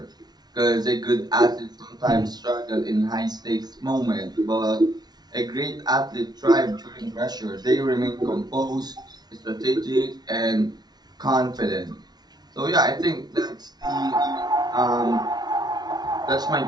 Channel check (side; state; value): left; late; 0.19 ms